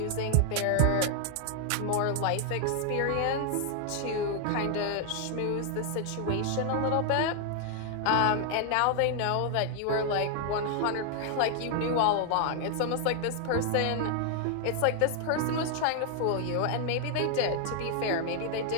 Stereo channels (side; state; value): both; different; correlation 0.00